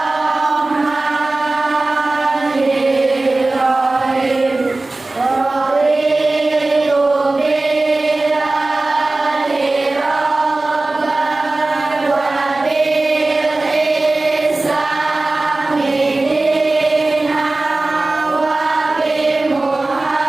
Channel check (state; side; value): quieter; left; 3.1 dB